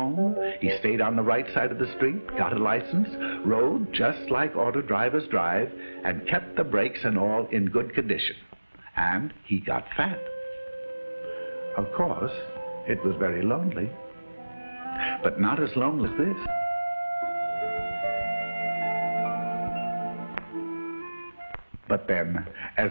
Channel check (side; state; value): both; inverted; correlation -1.00